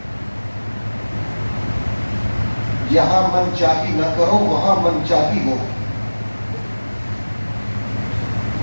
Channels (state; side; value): inverted; both; correlation -1.00